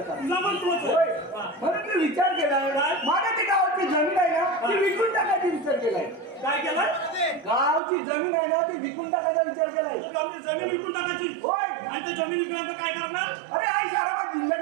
तुझा पण तोच आहे. होय. हा. म्हणून मी विचार केलाय काय? माझ्या ती गावाची जमीन आहे ना ती विकून टाकायची विचार केलाय. काय केलं? गावची जमीन आहे ना ती विकून टाकायचा विचार केलाय. जमीन विकून टाकायची. होय. आणि त्या जमीन विकल्यानंतर काय करणार? अरे आई शाराबाद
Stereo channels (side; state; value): left; drops out; at 7.8 s